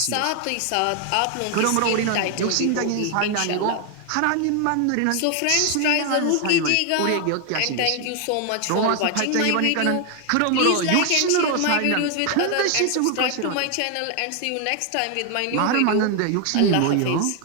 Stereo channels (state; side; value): different; both; correlation 0.01